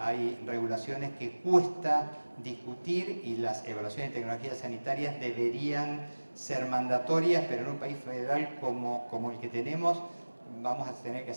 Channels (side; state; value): both; inverted; correlation -1.00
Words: hay regulaciones que cuesta discutir, y las evaluaciones de tecnologías sanitarias deberían ser mandatorias, pero en un país federal como el que tenemos vamos a tener que